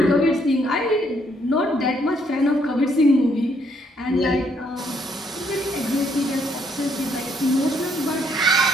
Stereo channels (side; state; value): both; normal; correlation 0.70